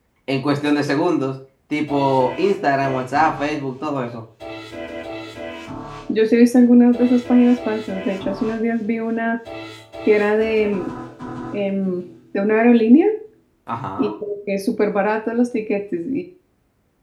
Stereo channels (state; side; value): identical; both; correlation 1.00